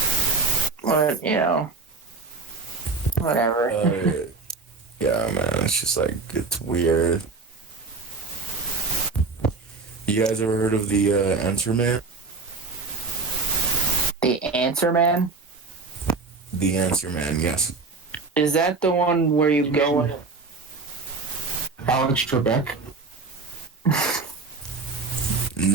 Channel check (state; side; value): quieter; left; 4.1 dB